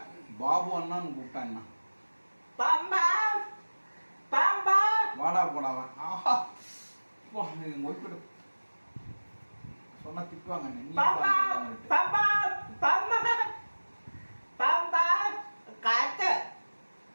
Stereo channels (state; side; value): inverted; both; correlation -1.00